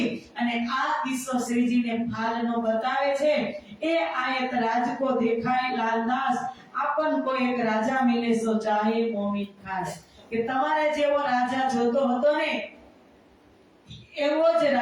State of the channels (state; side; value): identical; both; correlation 1.00